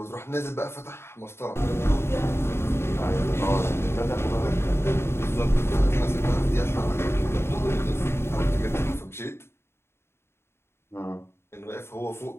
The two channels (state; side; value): late; right; 0.12 ms